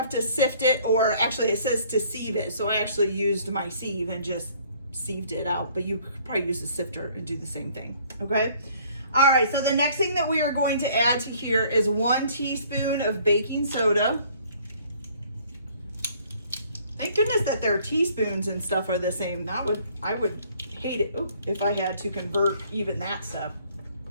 to sift it, or actually it says to sieve it. So I actually used my sieve and just sieved it out, but you could probably use a sifter and do the same thing, okay? All right, so the next thing that we are going to add to here is 1 teaspoon of baking soda. Thank goodness that their teaspoons and stuff are the same. I would hate it if I had to convert even that stuff.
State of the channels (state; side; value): inverted; both; correlation -0.59